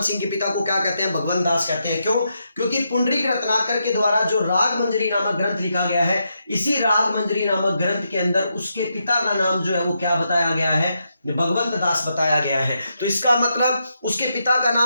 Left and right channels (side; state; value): both; inverted; correlation -0.82